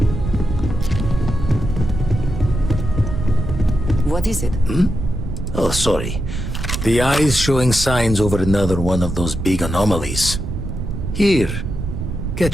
What is it? Oh, sorry. The eye's showing signs over another one of those big anomalies. Here,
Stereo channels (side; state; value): right; noise; rumble, 5 dB below the sound